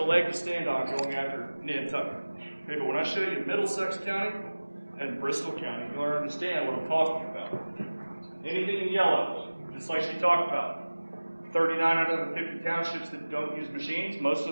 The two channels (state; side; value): inverted; both; correlation -1.00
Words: leg to stand on going after Nantucket. Okay, but when I show you Middlesex County and Bristol County, you'll understand what I'm talking about. Anything in yellow, just like she talked about. 39 out of the 50 townships that don't use machines, most